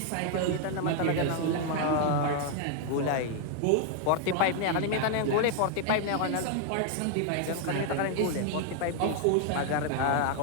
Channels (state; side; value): different; both; correlation 0.00